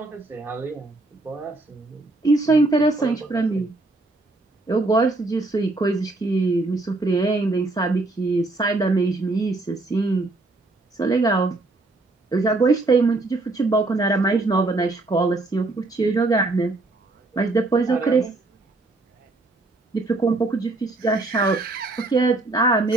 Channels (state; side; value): quieter; left; 3.0 dB